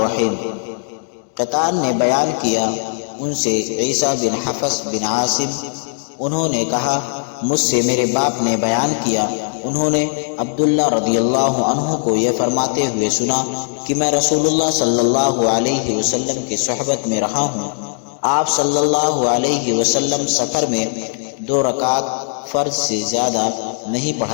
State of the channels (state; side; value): silent; right; digital silence